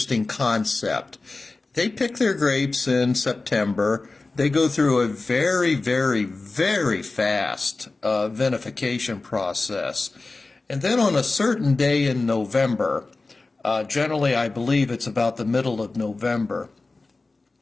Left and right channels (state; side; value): quieter; right; 3.5 dB